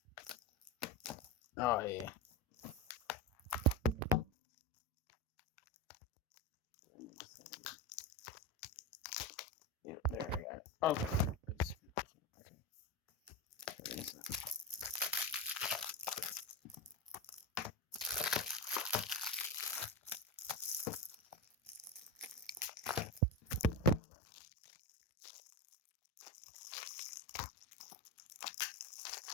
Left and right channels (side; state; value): both; normal; correlation 0.18